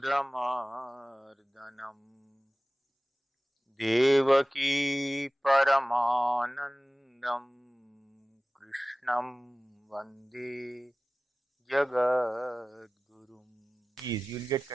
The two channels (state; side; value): normal; both; correlation 0.97